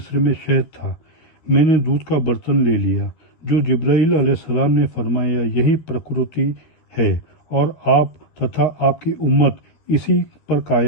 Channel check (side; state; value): right; late; 13 ms